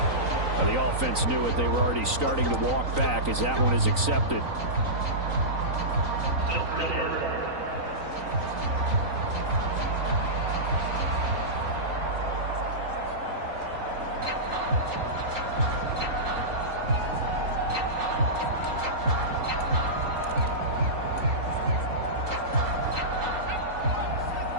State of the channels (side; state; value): left; late; 3.9 ms